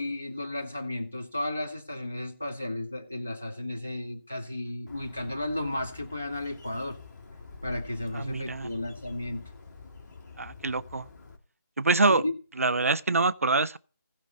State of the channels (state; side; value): inverted; both; correlation -0.59